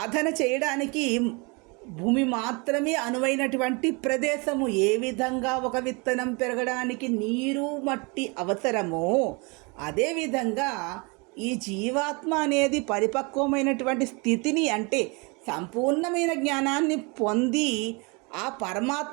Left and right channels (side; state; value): left; quieter; 29.9 dB